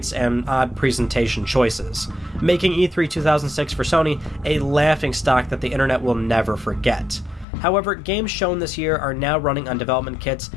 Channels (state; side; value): drops out; right; at 7.5 s